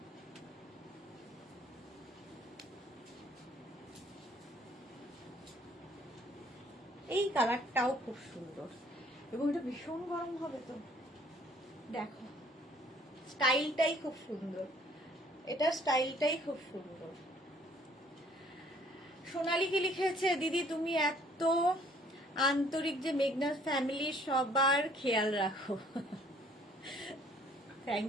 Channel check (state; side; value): normal; both; correlation 0.59